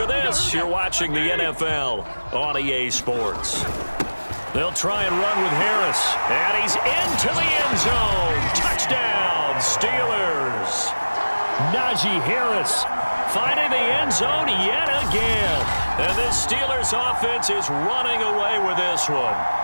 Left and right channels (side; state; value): both; inverted; correlation -1.00